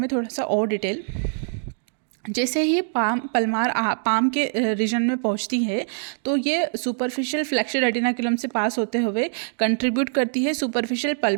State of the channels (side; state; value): left; silent; digital silence